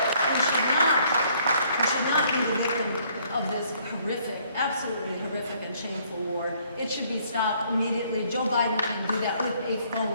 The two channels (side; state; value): both; inverted; correlation -0.64